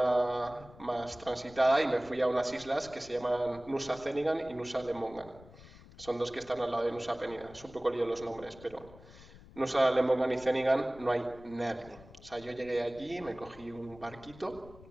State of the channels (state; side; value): noise; left; rumble, 20 dB below the sound